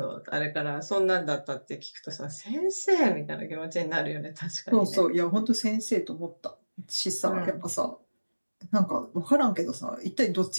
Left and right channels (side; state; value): both; inverted; correlation -1.00